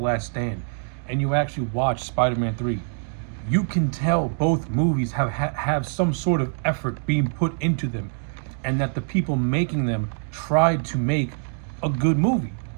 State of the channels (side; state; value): left; silent; 62 dB below the other